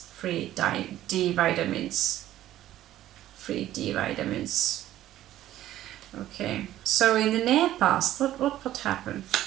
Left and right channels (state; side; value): quieter; left; 13.5 dB